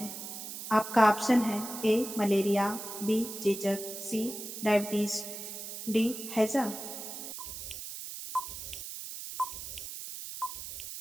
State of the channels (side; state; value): right; noise; hiss, 8 dB below the sound